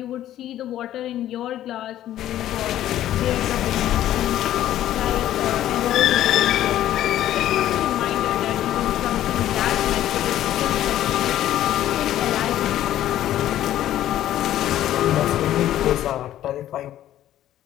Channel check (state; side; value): quieter; right; 12.6 dB